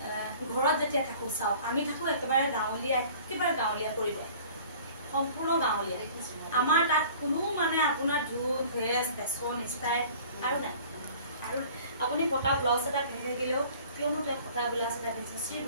ঘৰত যেতিয়া থাকোঁ চাওক আমি থাকোঁ একেবাৰে গাঁৱলীয়া পৰিৱেশ সম্পূৰ্ণ গাঁৱলীয়া আমাৰ তাত কোনো মানে আপোনাৰ ধুত ভেজ ফেশ্বন ষ্টাইল আৰু নাই আৰু আপুনি ফটা ব্লাউজ এটা পিন্ধি থাকিলেও কিয়নো তাত ফটা ব্লাউজ এটা পিন্ধিছে চি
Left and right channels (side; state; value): both; inverted; correlation -0.48